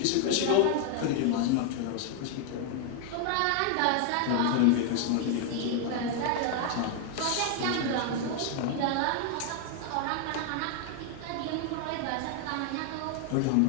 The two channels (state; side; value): different; both; correlation 0.00